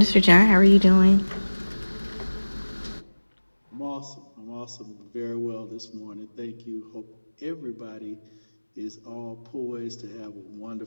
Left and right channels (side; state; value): both; inverted; correlation -1.00